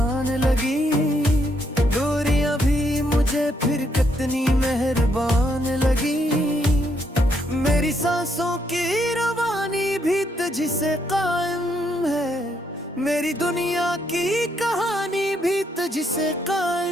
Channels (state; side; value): normal; both; correlation 0.75